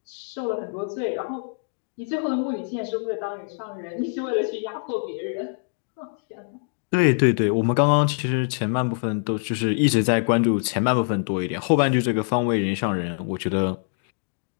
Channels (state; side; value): silent; right; 62 dB below the other